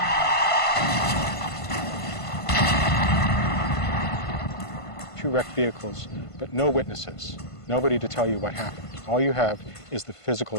Two wrecked vehicles, but no witnesses, nobody to tell you what happened. All you have is the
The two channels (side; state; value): right; late; 1.5 ms